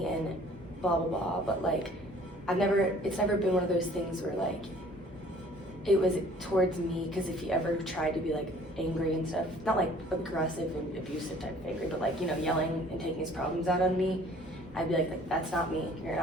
and blah blah blah, but like it's never been one of those things where like it was towards me, because if he ever tried to be like angry and stuff, not like aggressive and abusive type of angry, but like, you know, yelling and taking his problems out on me, I'd be like, that's not me. You're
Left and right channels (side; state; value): both; normal; correlation 0.53